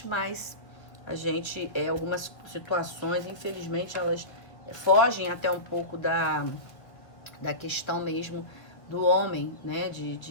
mas algumas situações, infelizmente, elas fogem até um pouco da questão mesmo do homem, né?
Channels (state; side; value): late; right; 1.8 ms